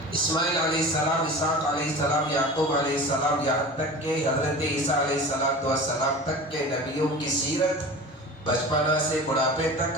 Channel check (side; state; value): both; normal; correlation 0.35